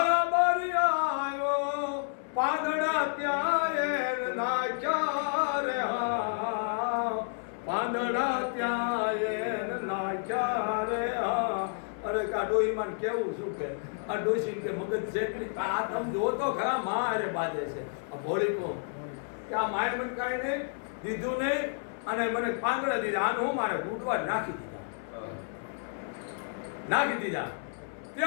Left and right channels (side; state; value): right; silent; 57 dB below the other